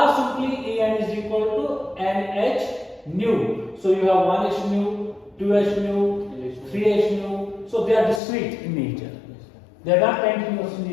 simply En is equal to nh nu. So you have 1h nu, 2h nu, 3h nu. So they are discrete in nature. They are not continuous in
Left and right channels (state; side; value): drops out; right; at 8.2 s